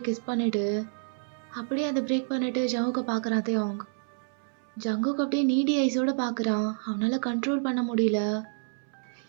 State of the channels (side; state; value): left; silent; 59 dB below the other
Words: கிஸ் பண்ணிவிட்டு அப்படியே அதை பிரேக் பண்ணிவிட்டு ஜங்குக்கை பார்க்குறான் தியாங். ஜங்குக்கு அப்படியே நீடி ஐஸோடு பார்க்குறான். அவனால் கண்ட்ரோல் பண்ண முடியல.